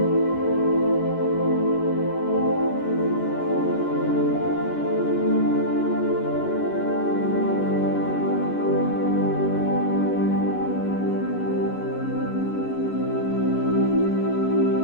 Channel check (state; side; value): late; right; 11 ms